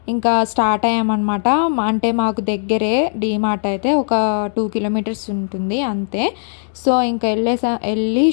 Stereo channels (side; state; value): right; silent; digital silence